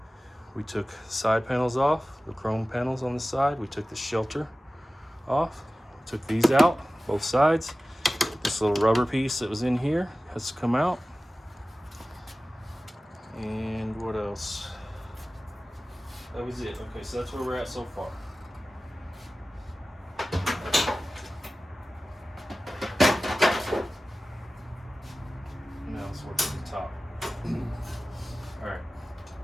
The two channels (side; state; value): both; normal; correlation 0.96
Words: We took side panels off, the chrome panels on the side. We took the shelter off. We took these out, both sides. This little rubber piece that was in here has to come out. And what else? That was it. Okay, so that's where we're at so far. Now let's work at the top. All right.